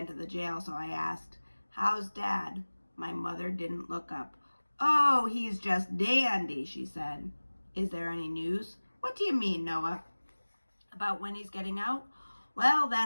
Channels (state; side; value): inverted; both; correlation -1.00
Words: to the jail, so I asked, How's Dad? My mother didn't look up. Oh, he's just dandy, she said. Is there any news? What do you mean, Noah? About when he's getting out? Well,